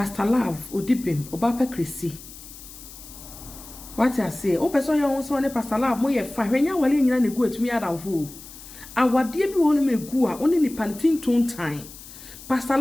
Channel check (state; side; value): noise; left; hiss, 16 dB below the sound